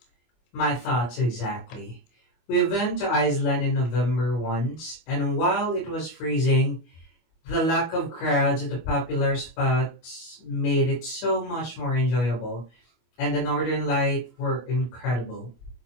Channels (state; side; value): late; right; 25 ms